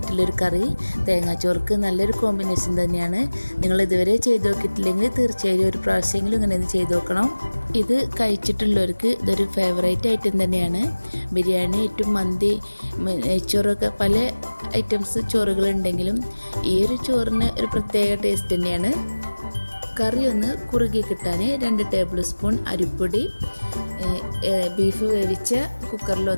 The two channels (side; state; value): both; inverted; correlation -1.00